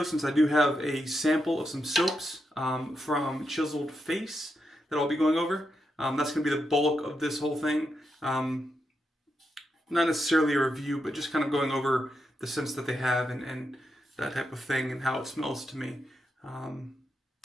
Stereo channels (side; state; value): both; normal; correlation 0.84